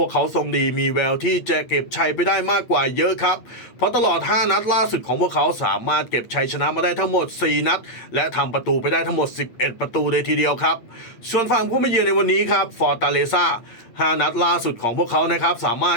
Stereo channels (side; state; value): right; late; 8.7 ms